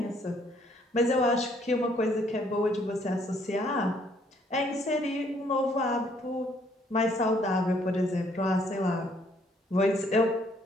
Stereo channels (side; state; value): both; normal; correlation 0.66